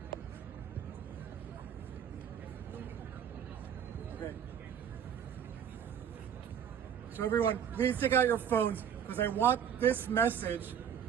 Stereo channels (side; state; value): left; quieter; 8.5 dB